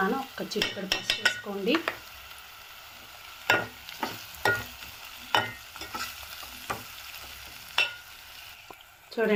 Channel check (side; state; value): both; identical; correlation 1.00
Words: ఒక చిటికెడు పసుపు వేసుకోండి.